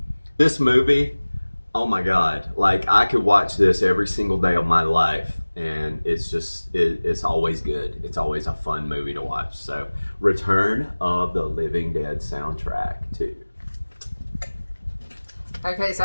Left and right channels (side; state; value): both; inverted; correlation -1.00